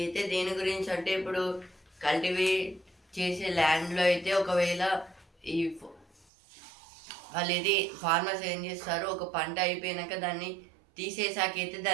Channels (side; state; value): left; drops out; at 6.2 s